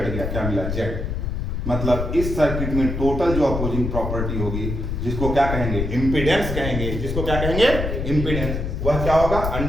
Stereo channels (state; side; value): noise; left; rumble, 3 dB below the sound